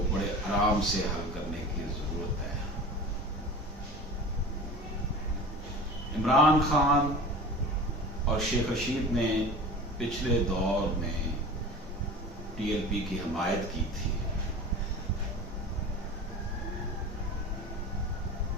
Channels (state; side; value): normal; both; correlation 0.36